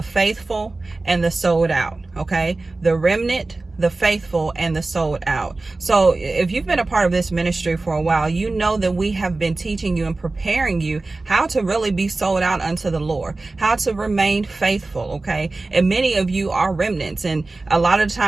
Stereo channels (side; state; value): left; quieter; 3.3 dB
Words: faithful, and the sold out. Okay, the remnant, the faithful, and the sold out. So if you've been a part of this ministry for a while, you know that we have been teaching you and preparing you how to really be sold out unto the Lord, how to remain faithful. Okay, and many of you are remnants, and a lot of